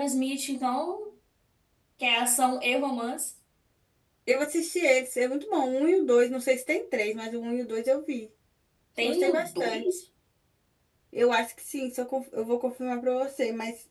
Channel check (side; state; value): both; identical; correlation 1.00